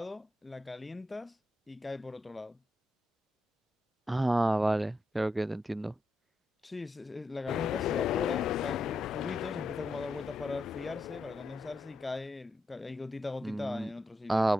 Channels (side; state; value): both; normal; correlation 0.85